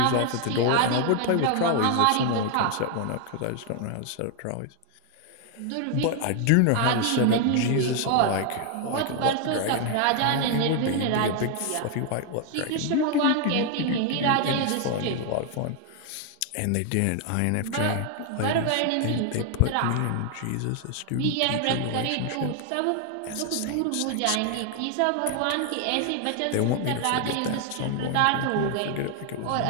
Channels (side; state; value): both; different; correlation 0.00